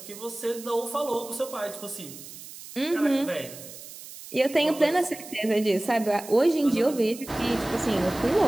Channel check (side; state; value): right; noise; hiss, 15 dB below the sound